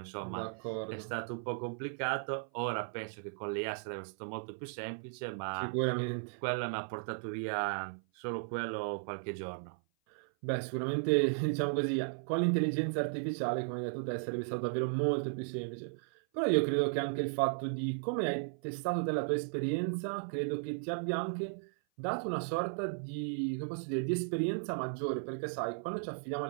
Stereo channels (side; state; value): left; silent; 54 dB below the other